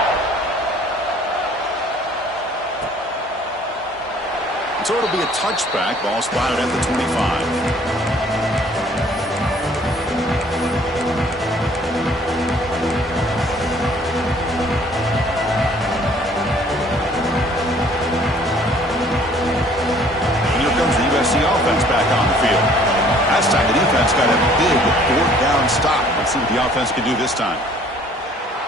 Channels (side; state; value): both; normal; correlation 0.57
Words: So it'll be a touchback. Ball spotted at the 25. Offense back on the field. Last time the defense got a big fourth down stop. Let's see what the offense can do this time.